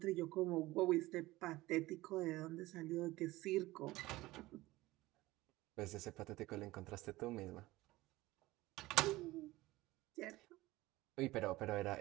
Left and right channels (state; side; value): quieter; left; 18.7 dB